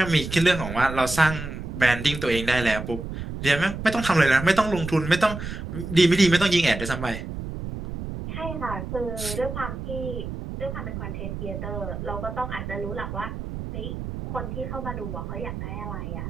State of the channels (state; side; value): noise; right; rumble, 7 dB below the sound